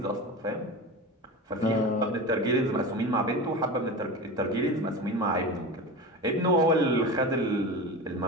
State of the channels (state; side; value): normal; both; correlation 0.28